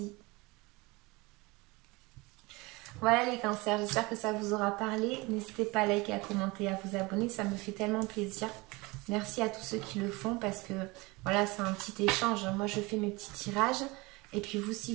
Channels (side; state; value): left; quieter; 24.1 dB